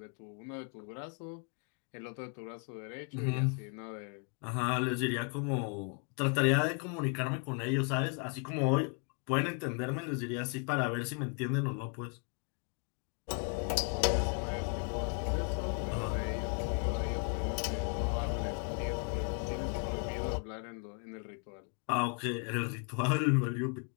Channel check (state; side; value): quieter; right; 38.8 dB